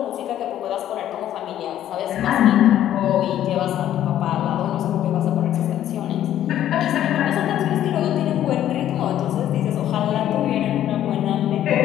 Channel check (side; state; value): right; quieter; 11.7 dB